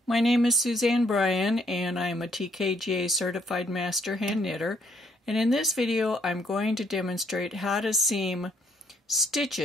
My name is Suzanne Bryan and I am a TKGA Certified Master Hand Knitter, and in this video I'm going to demonstrate how to seam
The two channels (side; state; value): both; normal; correlation 0.69